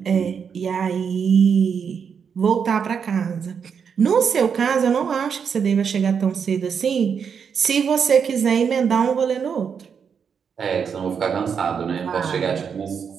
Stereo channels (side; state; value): left; quieter; 6.8 dB